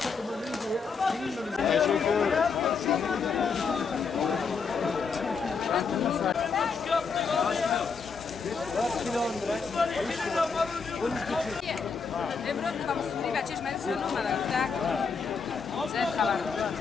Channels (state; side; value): quieter; right; 5.3 dB